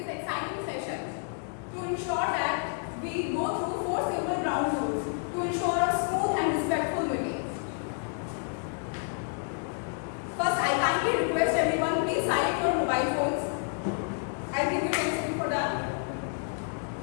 exciting session, to ensure that we go through 4 simple ground rules to ensure a smooth and respectful meeting. First, I kindly request everyone, please silence your mobile phones. I'll give you 10 seconds for that.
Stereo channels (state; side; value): silent; right; 58 dB below the other